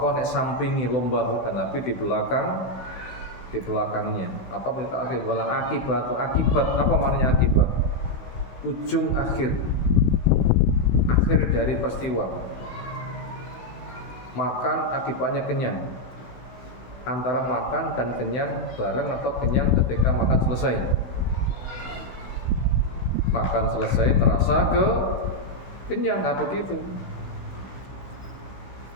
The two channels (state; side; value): late; right; 16 ms